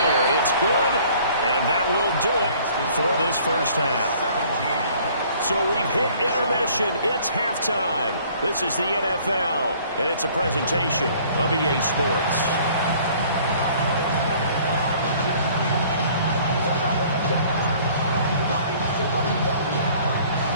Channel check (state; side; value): inverted; both; correlation -0.55